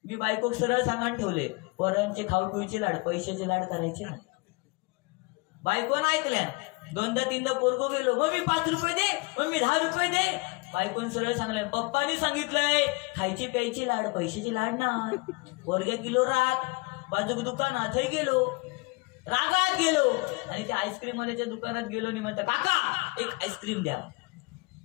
मी बायको सरळ सांगान ठेवले, पोरांचे खाऊ पिऊचे लाड, पैशाचे लाड करायचे ना. बायकोनं ऐकल्या. 2दा 3दा पोरगो गेलो, मम्मी 5 रुपये दे, मम्मी 10 रुपये दे. बायकोन सरळ सांगलंय, पप्पानी सांगितलंय खायची प्यायची लाड, पैशाची लाड ना. वर्ग किलो राग, बाजूक दुकानात गेलो, रागात गेलो आणि त्या आईस्क्रीम वाल्याच्या दुकानात गेलो आणि म्हणता, काका एक आईस्क्रीम द्या.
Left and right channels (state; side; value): quieter; right; 27.3 dB